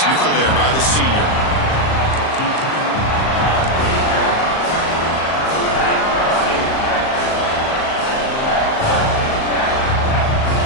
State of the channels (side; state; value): right; late; 38 ms